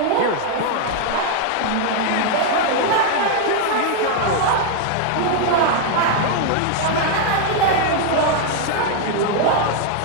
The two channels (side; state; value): both; different; correlation 0.00